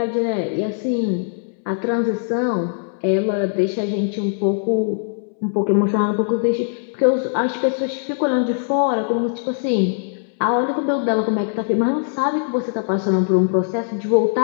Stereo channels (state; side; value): silent; right; 65 dB below the other